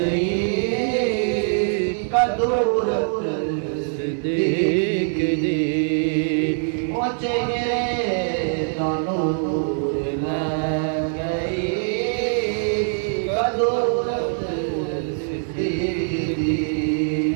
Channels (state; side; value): silent; left; digital silence